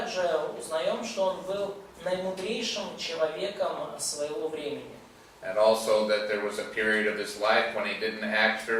узнаем, что он был наимудрейшим человеком своего времени. And also that there was a period of his life when he didn't act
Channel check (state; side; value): identical; both; correlation 1.00